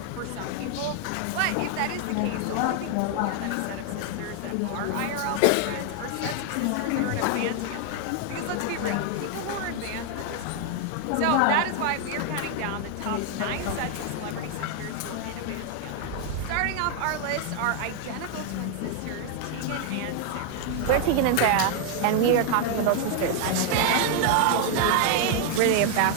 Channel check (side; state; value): both; different; correlation 0.00